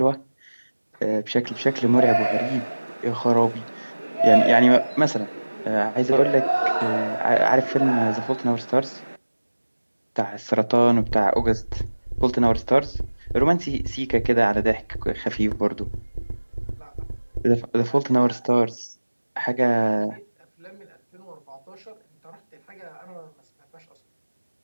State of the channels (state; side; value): inverted; both; correlation -1.00